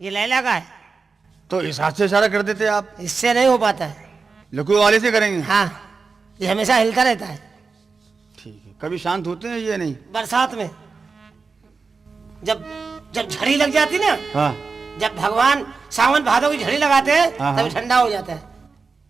लैला का है। तो इस हाथ से इशारा कर देते आप। इससे नहीं हो पाता है। लकू वाले से करेंगे? हाँ, ये हमेशा हिलता रहता है। ठीक है। कभी शांत होते हैं ये नहीं? बरसात में जब जब झड़ी लग जाती ना, हाँ। जब भगवान सावन भादों की झड़ी लगाते हैं हाँ, तभी ठंडा हो जाता है।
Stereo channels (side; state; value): left; quieter; 4.6 dB